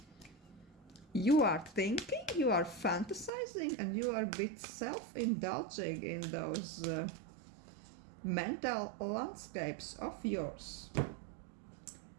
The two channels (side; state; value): left; drops out; at 3.3 s